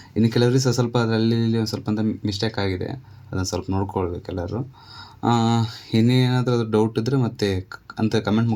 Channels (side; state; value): both; identical; correlation 1.00